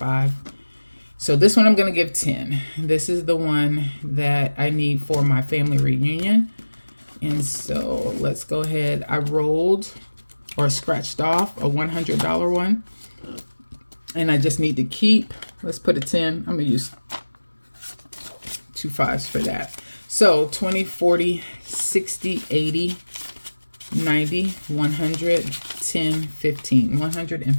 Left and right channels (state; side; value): inverted; both; correlation -1.00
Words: So this one I'm going to give 10. This is the one that I need for my family reunion. And so let's go ahead. I rolled or scratched off a $100 one. And I just need to keep, let's put a 10. I'm going to use 2 5s for that. So 20, 40, 60, 80, 90, 100, 10, 15.